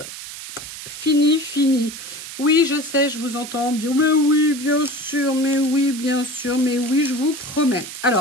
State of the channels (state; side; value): noise; right; hiss, 11 dB below the sound